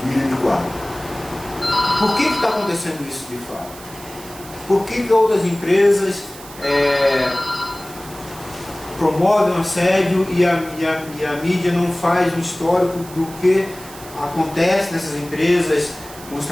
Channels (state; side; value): noise; right; hiss, 17 dB below the sound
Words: em 2004. Por que está acontecendo isso de fato? Por que outras empresas promovem o assédio e a mídia não faz um histórico do que acontece nessas empresas com os